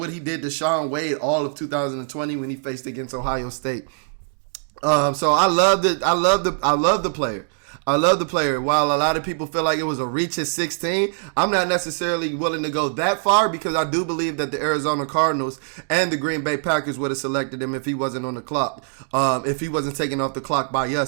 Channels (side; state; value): left; silent; 64 dB below the other